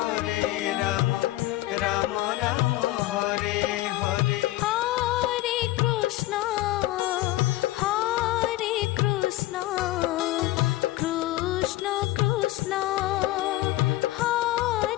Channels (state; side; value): quieter; right; 16.8 dB